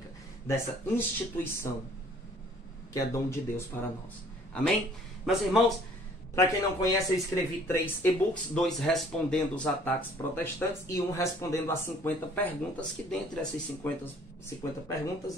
dessa instituição que é dom de Deus para nós. Amém? Meus irmãos, para quem não conhece, eu escrevi 3 e-books, 2 respondendo os ataques protestantes e 1 respondendo as 50 perguntas, que dentre essas 50 perguntas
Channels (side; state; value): both; normal; correlation 0.56